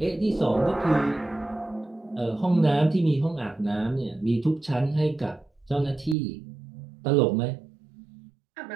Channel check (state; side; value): drops out; left; at 6.2 s